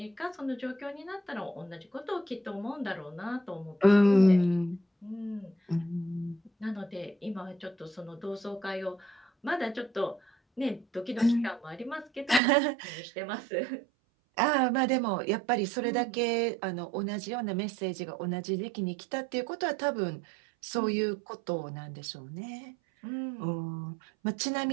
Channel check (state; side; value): drops out; left; at 12.4 s